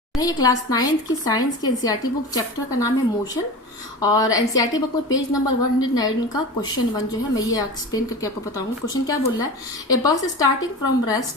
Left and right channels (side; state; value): both; normal; correlation 0.31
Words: है ये class 9th की साइंस की एनसीईआरटी बुक, चैप्टर का नाम है मोशन। और एनसीईआरटी बुक में पेज नंबर 109 का क्वेश्चन 1 जो है मैं ये एक्सप्लेन करके आपको बताऊंगा। क्वेश्चन क्या बोल रहा है, a bus starting from